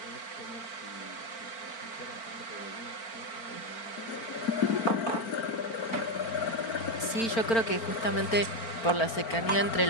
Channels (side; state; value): right; late; 4.4 ms